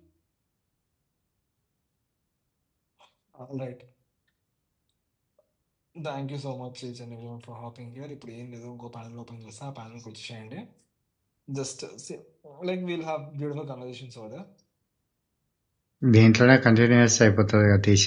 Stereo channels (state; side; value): identical; both; correlation 1.00